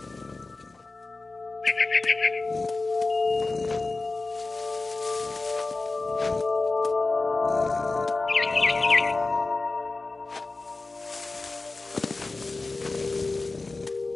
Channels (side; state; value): right; quieter; 3.5 dB